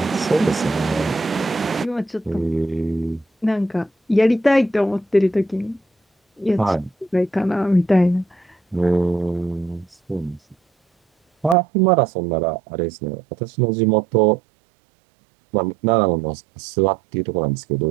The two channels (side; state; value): left; drops out; at 11.6 s